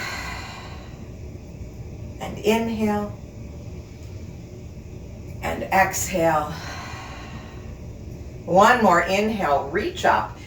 And inhale and exhale. One more inhale, reach up,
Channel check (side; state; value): both; identical; correlation 1.00